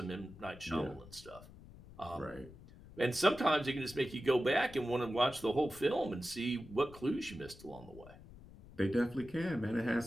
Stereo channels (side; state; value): left; noise; rumble, 19 dB below the sound